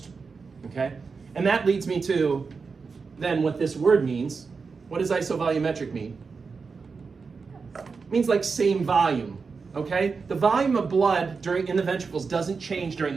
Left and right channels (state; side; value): quieter; left; 4.9 dB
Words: okay? And that leads me to than what this word means. What does isovolumetric mean? It means like same volume, okay? The volume of blood in the ventricles doesn't change during